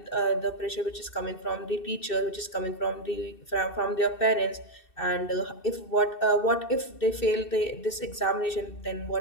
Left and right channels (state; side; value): late; right; 2.6 ms